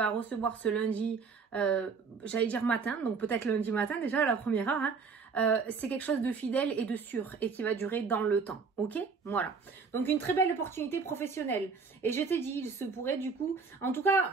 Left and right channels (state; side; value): quieter; left; 5.1 dB